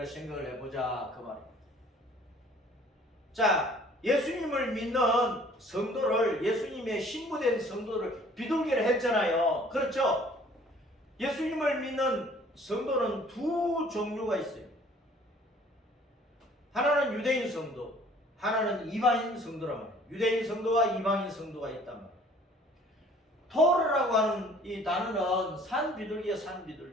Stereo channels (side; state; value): both; normal; correlation 0.54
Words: 생각을 해보자 그 말입니다. 자, 예수님을 믿는 성도를, 예수님의 신부된 성도를 비둘기를 했잖아요. 그렇죠? 예수님을 믿는 성도는 두 종류가 있어요. 하나는 유대인 성도, 하나는 이방인 성도란 말이에요. 유대인 성도와 이방인 성도가 있단 말이에요. 토르라고 하는 이 단어는 산 비둘기야, 산